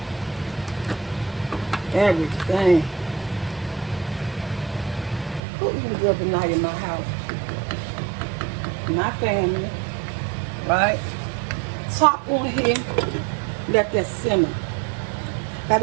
Everything. Who eating good tonight in my house? My family. Right? Top on here. Let that simmer. Got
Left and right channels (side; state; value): left; drops out; at 5.4 s